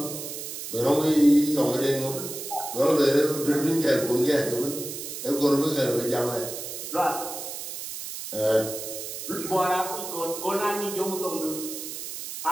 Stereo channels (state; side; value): noise; right; hiss, 8 dB below the sound